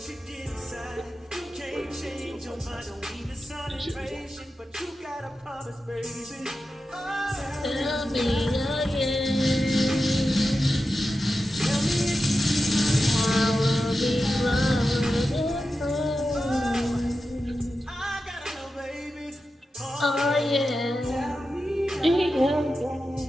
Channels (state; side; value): normal; both; correlation 0.91